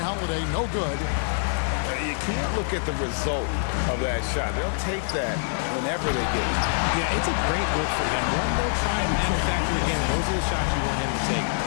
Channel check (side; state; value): right; silent; digital silence